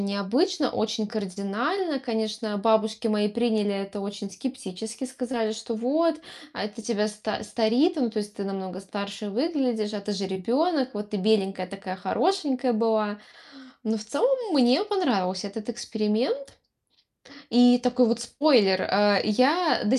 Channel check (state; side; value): identical; both; correlation 1.00